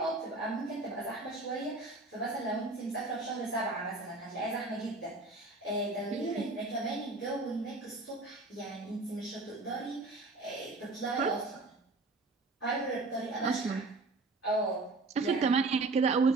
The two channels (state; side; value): quieter; left; 3.3 dB